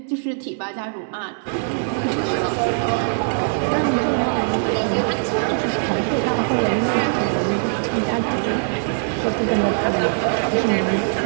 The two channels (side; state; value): left; silent; digital silence